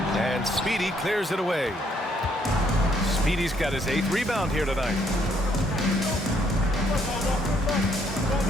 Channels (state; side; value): normal; both; correlation 0.69